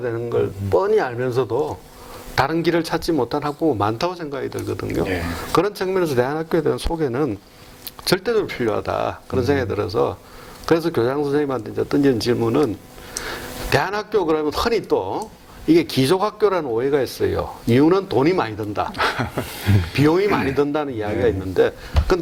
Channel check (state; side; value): identical; both; correlation 1.00